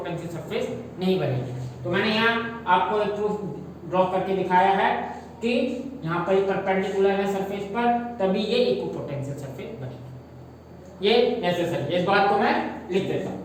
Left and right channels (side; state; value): both; identical; correlation 1.00